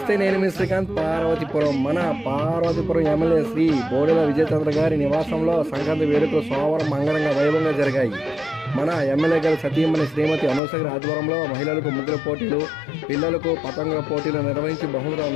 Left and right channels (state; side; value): drops out; right; at 10.6 s